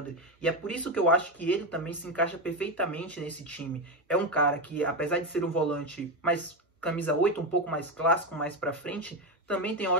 E é por isso que eu acho que ele também se encaixa perfeitamente nesse time. É um cara que, apesar de ser um volante mais camisa 8, um pouco mais clássico, mais para frente, também tem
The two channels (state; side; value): normal; both; correlation 0.12